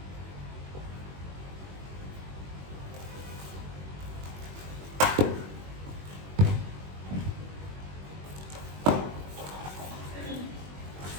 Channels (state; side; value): late; left; 21 ms